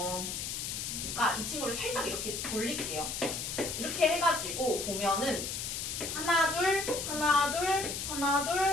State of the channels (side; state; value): left; noise; hiss, 4 dB below the sound